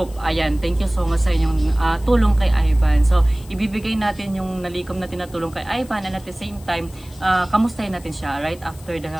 Ayan, thank you so much sa inyong tulong kay Ivan. So, ibibigay natin yung nalikom natin na tulong kay Ivan, and at the same time, kamustahin natin siya right after the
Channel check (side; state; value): left; noise; hiss, 23 dB below the sound